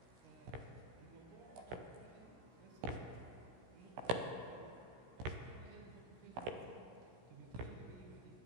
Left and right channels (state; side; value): late; left; 16 ms